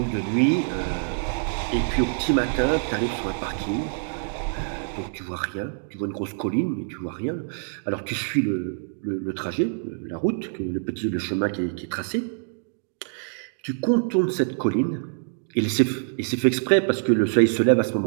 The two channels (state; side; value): silent; left; digital silence